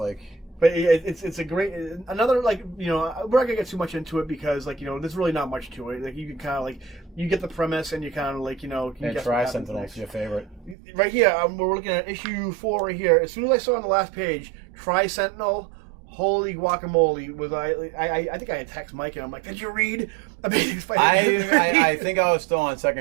But it's a great... Another, like, you know, we're not going to get too much into it because, like, you know, there's really not much to it. Like, you can kind of, like... You get the premise and you kind of, like, you know... And Tri-Sentinel's your favorite. Right here, we're looking at issue 4 right here. As soon as I saw on the last page, Tri-Sentinel... Holy guacamole! I think I had text Mike and I'm like, did you read Amazing Spider-Man? I think I was still on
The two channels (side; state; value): left; drops out; at 10.8 s